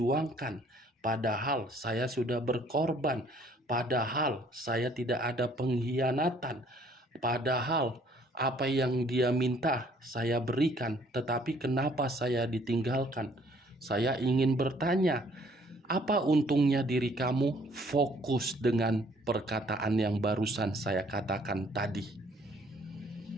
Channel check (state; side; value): normal; both; correlation 0.61